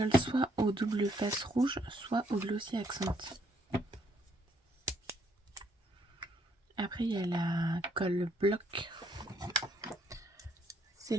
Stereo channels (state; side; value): normal; both; correlation 0.70